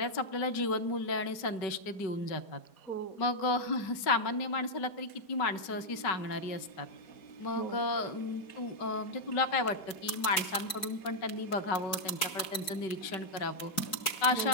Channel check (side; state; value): right; late; 4.6 ms